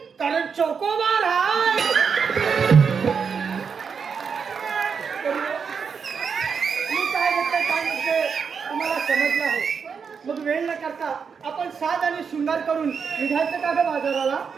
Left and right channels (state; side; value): quieter; left; 6.1 dB